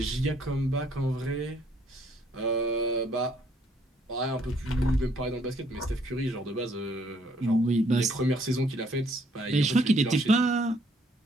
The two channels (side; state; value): both; normal; correlation 0.66